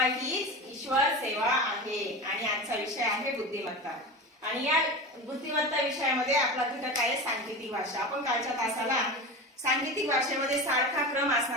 हीच ईश्वर सेवा आहे आणि आजचा विषय आहे बुद्धिमत्ता। आणि या बुद्धिमत्ता विषयामध्ये आपला घटक आहे सांकेतिक भाषा। आपण कालच्या तासाला सांकेतिक भाषेमध्ये सारखा क्रम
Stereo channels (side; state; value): both; normal; correlation 0.27